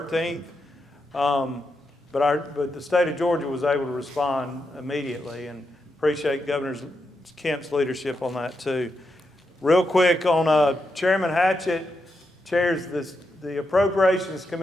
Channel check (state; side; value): normal; both; correlation 0.85